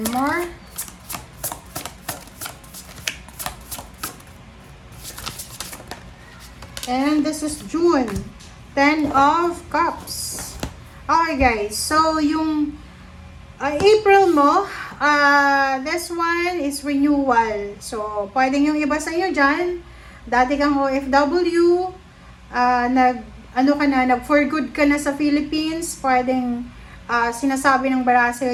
more. And this is June. 10 of Cups. Okay guys, so yung April mo, this one is renewal. So, pwedeng yung iba sa inyo dyan, dati kang OFW, nag for good ka na sa Philippines, pwedeng sinasabi ng bara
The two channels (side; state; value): both; identical; correlation 1.00